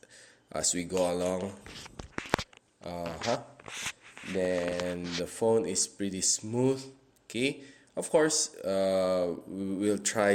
we go along. Then the phone is pretty smooth. Okay, of course, we'll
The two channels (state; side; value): identical; both; correlation 1.00